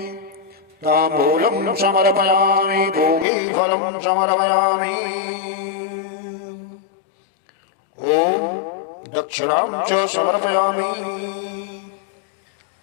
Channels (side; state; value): right; drops out; at 3.2 s